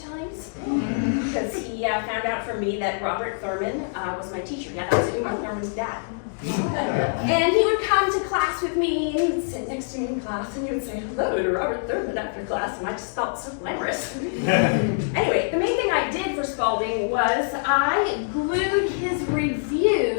because he found out from me that Robert Thurman was my teacher. Yeah, that was Uma Thurman's dad. And he would come to class with me, and he would sit next to me in class, and he would say hello to Robert Thurman after class, and I just felt so glamorous. Anyway, the main thing I did for Spalding was I glued his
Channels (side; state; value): right; silent; digital silence